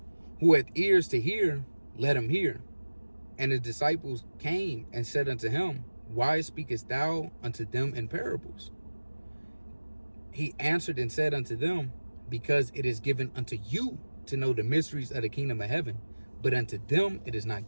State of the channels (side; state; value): both; inverted; correlation -1.00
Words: Who hath ears to hear, let him hear. And his disciples came and said unto him, why speakest thou unto them in parables? He answered and said unto them, because it is given unto you to know the mysteries of the kingdom of heaven, but unto them it is not